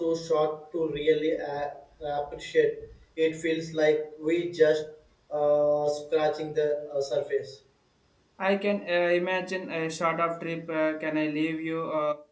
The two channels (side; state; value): both; identical; correlation 1.00